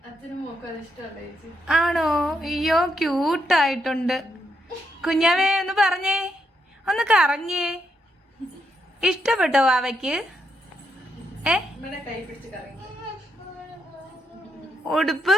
ആണോ? അയ്യോ ക്യൂട്ടായിട്ടുണ്ട്. കുഞ്ഞാവേ ഒന്ന് പറഞ്ഞേ, ഒന്ന് കറങ്ങിയേ. ഇഷ്ടപ്പെട്ടോ വാവയ്ക്ക്? ഉടുപ്പ്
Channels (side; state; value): both; normal; correlation 0.79